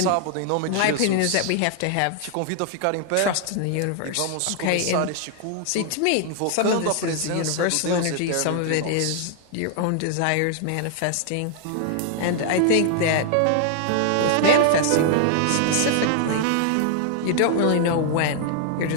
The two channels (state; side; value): different; both; correlation 0.00